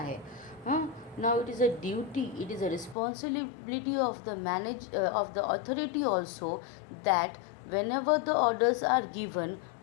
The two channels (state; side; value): drops out; right; at 3.0 s